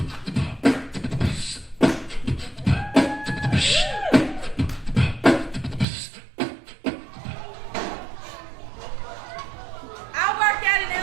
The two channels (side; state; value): left; drops out; at 5.9 s